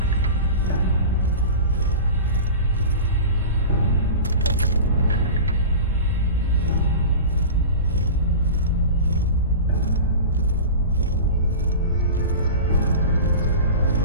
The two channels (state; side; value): inverted; both; correlation -0.32